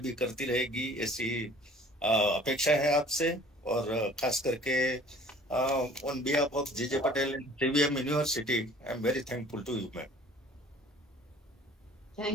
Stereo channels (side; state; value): both; normal; correlation 0.51